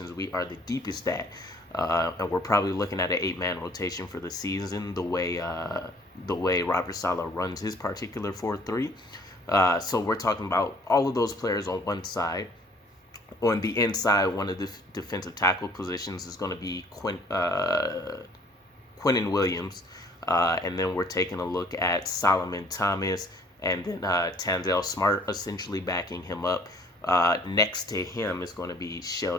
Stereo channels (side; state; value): both; normal; correlation 0.57